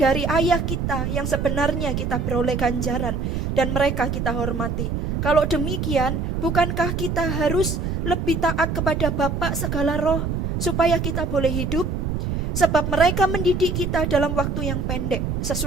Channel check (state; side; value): noise; right; rumble, 1 dB below the sound